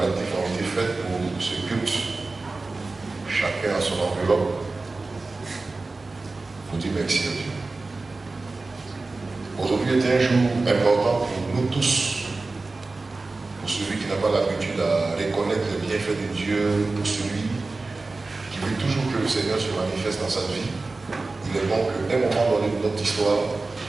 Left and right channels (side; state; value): left; quieter; 3.5 dB